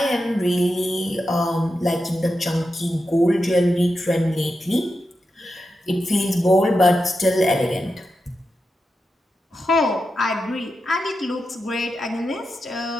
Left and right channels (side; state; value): both; normal; correlation 0.89